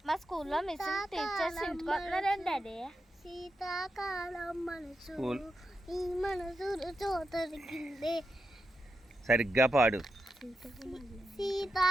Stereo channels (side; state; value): both; normal; correlation 0.87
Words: మా స్కూల్లో మిస్ టీచర్స్ ఇంటికి వస్తున్నారండి డాడీ. శీతాకాలం మనసు ఈ మనసు చోతరికిందే. సరిగ్గా పాడు.